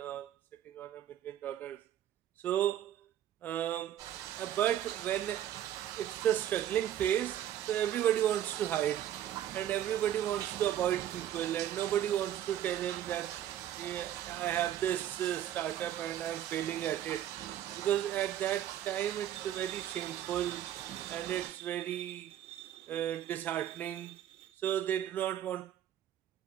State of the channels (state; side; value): quieter; left; 11.3 dB